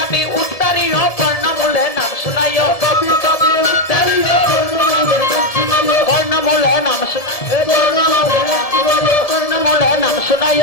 উত্তরীয় কর্ণমূলে নাম শুনাইও তাপি তাপি উত্তরীয় কর্ণমূলে নাম শুনাইও কর্ণমূলে নাম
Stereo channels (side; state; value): right; late; 1.7 ms